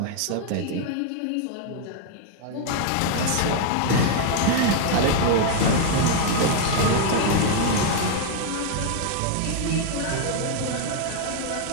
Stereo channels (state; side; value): different; both; correlation 0.00